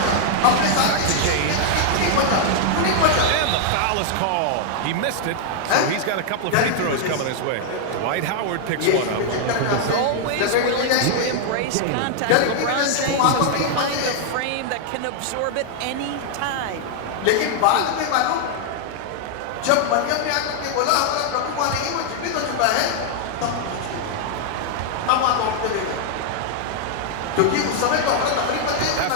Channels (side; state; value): both; different; correlation 0.00